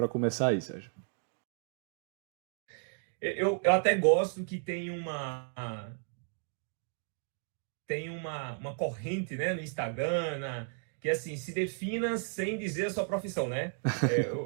começar aí, Sérgio. Eu até gosto que tem uma corrente, né, no Instagram, que assim, se defina sem dizer a sua profissão, né?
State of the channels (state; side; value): silent; left; 55 dB below the other